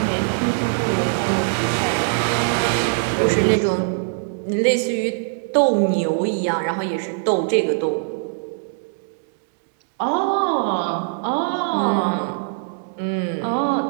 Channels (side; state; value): left; silent; digital silence